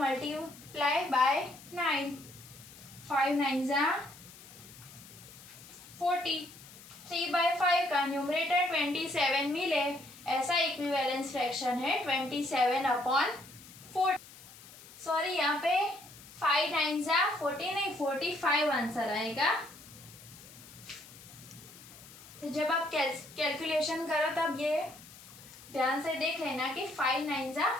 by 9। 5 9 जा 40। 3/5 का न्यूमरेटर 27 मिले ऐसा इक्विवेलेंस फ्रैक्शन है 27/40। सॉरी, यहाँ पे 5 9 जा 40 नहीं 45 आंसर आएगा। तो जब आप कैलकुलेशन करो तब ये ध्यान से देख लेना कि 5 9 जा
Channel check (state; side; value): noise; left; hiss, 19 dB below the sound